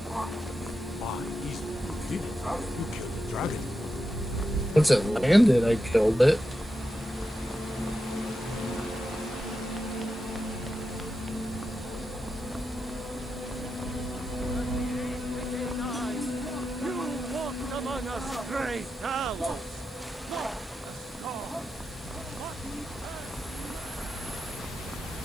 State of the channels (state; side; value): noise; right; hiss, 25 dB below the sound